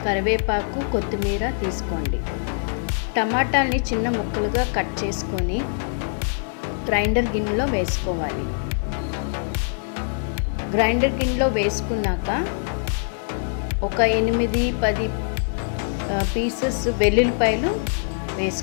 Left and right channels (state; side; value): silent; right; 63 dB below the other